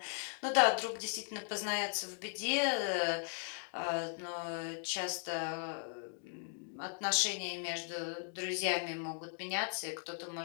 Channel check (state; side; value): silent; right; 53 dB below the other